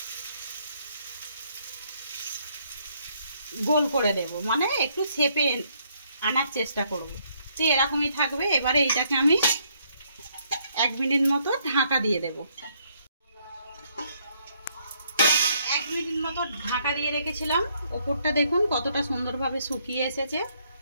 গোল করে দেব, মানে একটু শেপে আনার চেষ্টা করব। তো এরকমই থাকবে। এবারে এইটাকে আমি 1 মিনিট মতো ঢাকা দিয়ে দেব। 1 মিনিট মতো ঢাকা দিয়ে রেখেছিলাম। ওপরটা দেখুন কতটা সুন্দরভাবে শুকিয়ে এসেছে।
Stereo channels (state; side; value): inverted; both; correlation -0.70